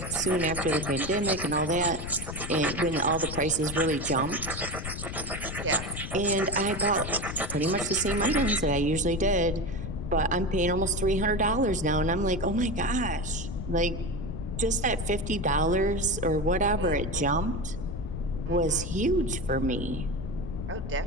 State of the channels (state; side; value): noise; left; rumble, 7 dB below the sound